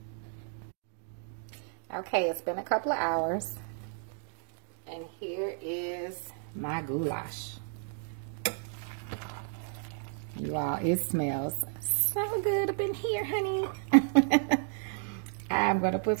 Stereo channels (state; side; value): silent; left; digital silence